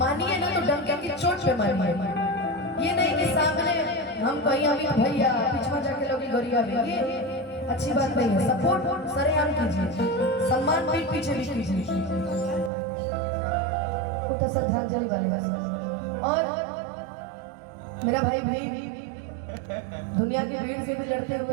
ना तो डंके की चोट पे मानिए, ये नहीं कि सामने हम कहीं अभी भैया पिछवा जाके लोग गोरिया भी, ये अच्छी बात नहीं है। सपोर्ट सरेआम कीजिए, सम्मान पीठ पीछे भी कीजिए, उठा श्रद्धांजलि वाले। और मेरा भाई दुनिया की भीड़ से भी लड़ते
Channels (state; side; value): drops out; left; at 12.7 s